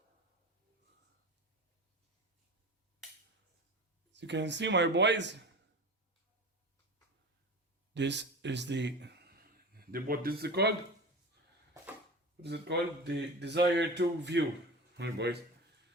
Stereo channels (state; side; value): normal; both; correlation 0.31